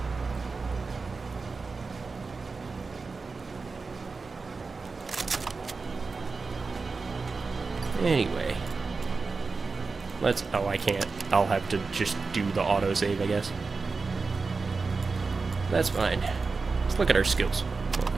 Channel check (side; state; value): left; quieter; 4.3 dB